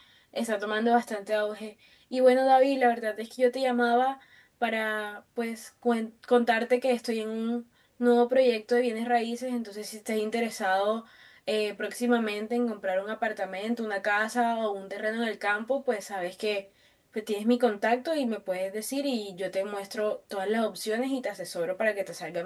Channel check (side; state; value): both; identical; correlation 1.00